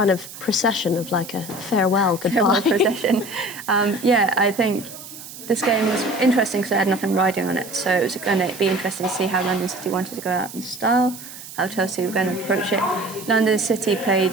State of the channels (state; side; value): noise; right; hiss, 14 dB below the sound